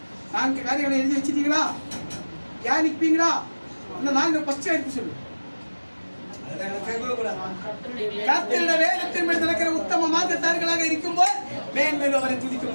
4 காரியங்களை எழுதி வச்சிட்டீங்களா? தியானிப்பீங்களா? அந்த 4 ஃபர்ஸ்ட் எடுத்து சொல்லு. கர்த்தருடைய வேதத்தின் மேல் நடக்கிற உத்தம மார்க்கத்தார்களாக இருக்கும்போது மேன்மேலும் அவரை துதிக்க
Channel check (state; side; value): inverted; both; correlation -1.00